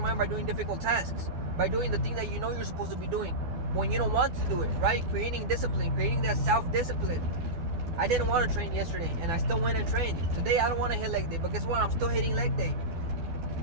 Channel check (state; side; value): late; left; 12 ms